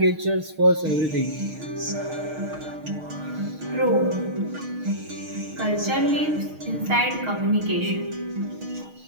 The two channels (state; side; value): late; left; 6.4 ms